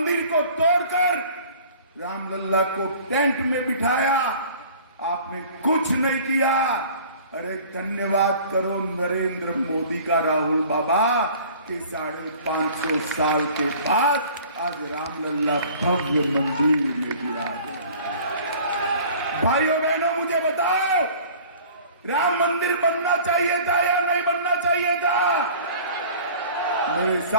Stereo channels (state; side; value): inverted; both; correlation -0.47